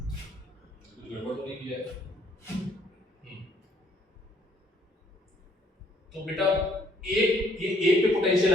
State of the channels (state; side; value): normal; both; correlation 0.64